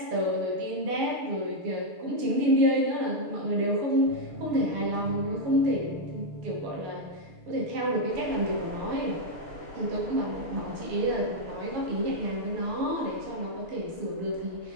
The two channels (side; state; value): left; late; 6.6 ms